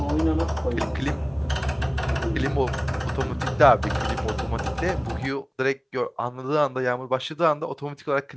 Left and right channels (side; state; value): both; identical; correlation 1.00